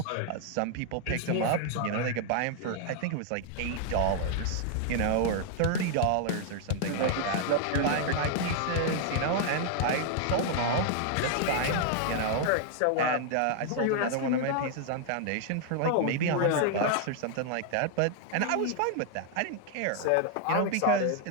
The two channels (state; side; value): different; both; correlation 0.00